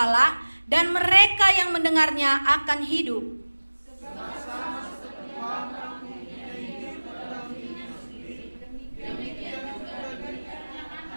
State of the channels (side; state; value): both; inverted; correlation -1.00